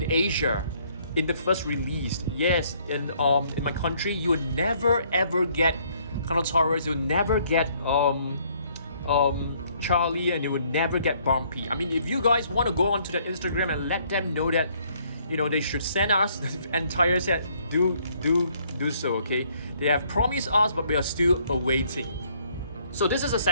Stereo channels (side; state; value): both; inverted; correlation -0.65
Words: Asia in the first release. Yes, in my country, you will never ever get Dinosaurs. You'll never get Charlie, and you will never get Bumpy. If you guys want to go onto the Instagram and let them know that they should send us the entire set, do so, okay? They have promised us, but we are still awaiting. So this is a